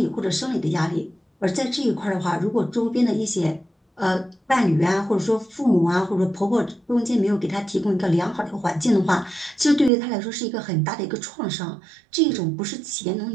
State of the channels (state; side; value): drops out; left; at 9.9 s